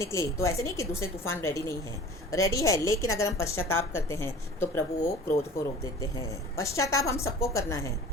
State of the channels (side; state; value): both; normal; correlation 0.42